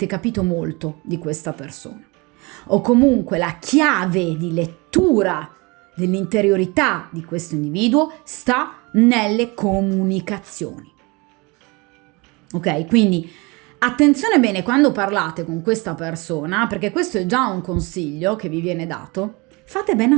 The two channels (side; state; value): left; quieter; 26.6 dB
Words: capito molto di questa persona. o comunque la chiave di lettura dell'interiorità di questo individuo sta nelle comunicazioni. Ok? Quindi attenzione bene quando parlate con questa persona, perché questo è già un consiglio che vi viene dato. Fate bene